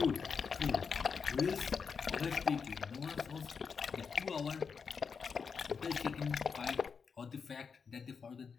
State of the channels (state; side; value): quieter; right; 5.8 dB